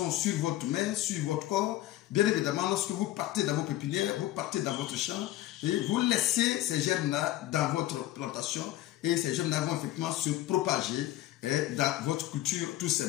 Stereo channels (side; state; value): right; quieter; 14.9 dB